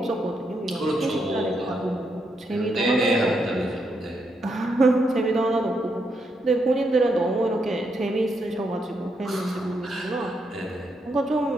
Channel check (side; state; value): both; normal; correlation 0.80